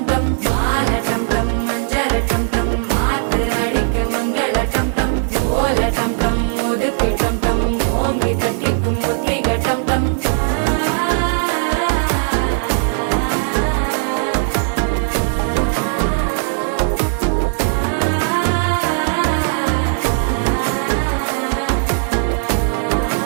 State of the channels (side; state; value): left; silent; digital silence